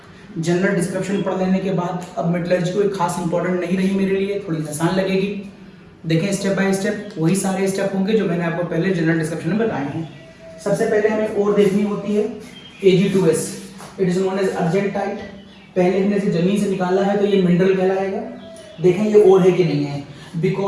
General description पढ़ लेने के बाद अब metallurgy कोई खास इंपॉर्टेंट नहीं रही मेरे लिए, थोड़ी आसान लगेगी। देखें स्टेप बाय स्टेप वही सारे स्टेप होंगे जो मैंने आपको पहले जनरल डिस्क्रिप्शन में बताए हैं। सबसे पहले हमें ओर देखनी होती है Ag2S, it is known as argentite. पहले हमने इसे जमीन से निकाला है तो ये मिनरल कहलाएगा। देखें ये ओर है कि नहीं है,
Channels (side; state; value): both; identical; correlation 1.00